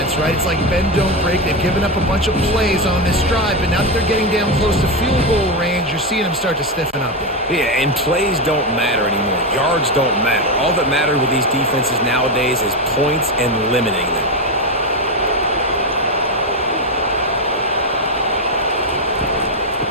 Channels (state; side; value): normal; both; correlation 0.11